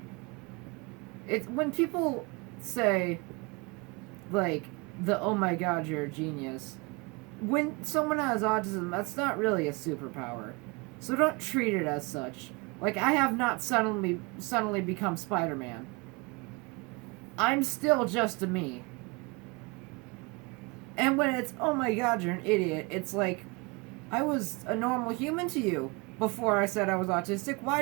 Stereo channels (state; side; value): quieter; left; 27.8 dB